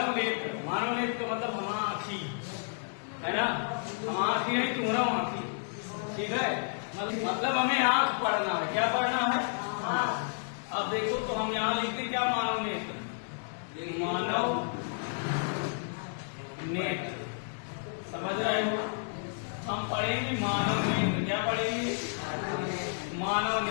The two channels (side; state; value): right; silent; 57 dB below the other